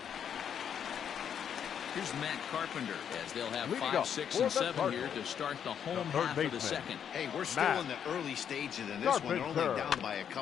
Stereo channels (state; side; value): quieter; right; 8.4 dB